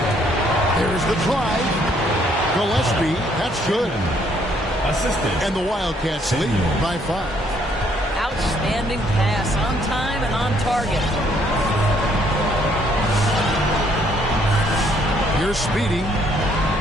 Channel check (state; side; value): normal; both; correlation 0.67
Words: There's the drive. Gillespie. That's good. Assistant. And the Wildcats lead by 5. Outstanding pass on time and on target. Here's Speedy.